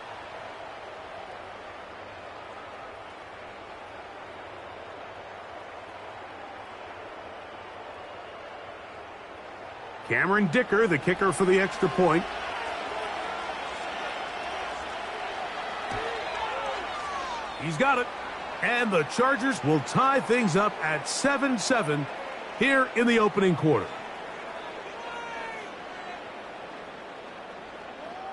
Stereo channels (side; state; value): both; identical; correlation 1.00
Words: Cameron Dicker, the kicker for the extra point. He's got it. And the Chargers will tie things up at 7-7 here in the opening quarter.